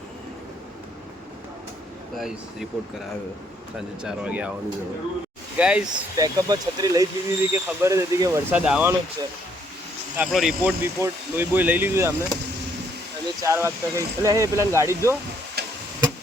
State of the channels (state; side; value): normal; both; correlation 0.68